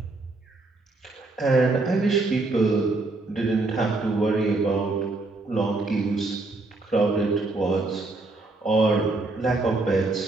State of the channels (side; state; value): left; quieter; 3.2 dB